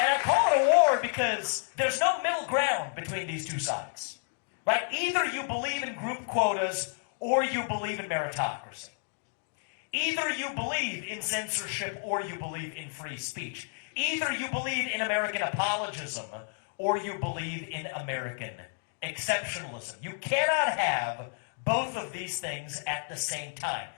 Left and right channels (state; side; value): silent; right; digital silence